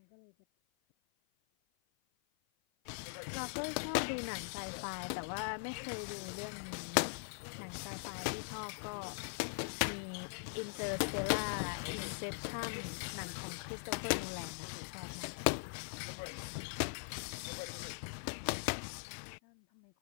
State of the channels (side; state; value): right; silent; 50 dB below the other